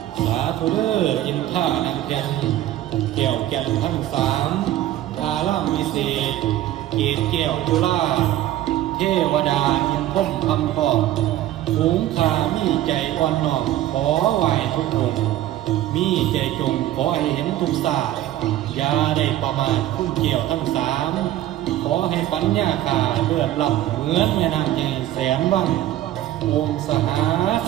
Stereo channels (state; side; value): quieter; left; 13.5 dB